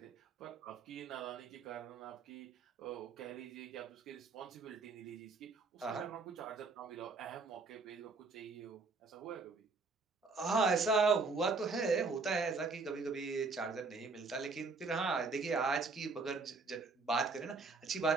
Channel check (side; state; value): left; quieter; 4.1 dB